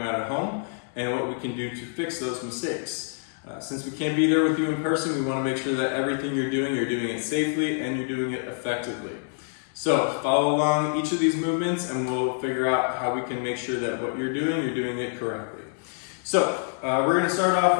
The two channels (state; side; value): silent; right; 61 dB below the other